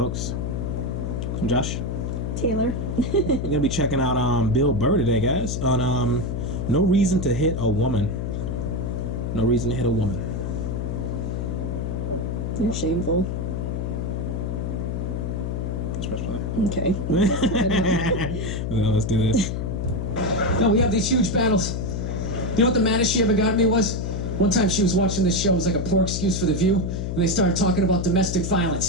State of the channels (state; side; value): noise; left; hum, 2 dB below the sound